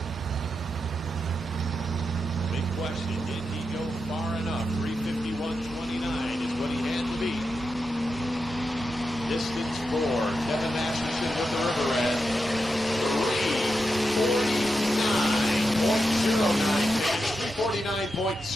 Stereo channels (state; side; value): normal; both; correlation 0.87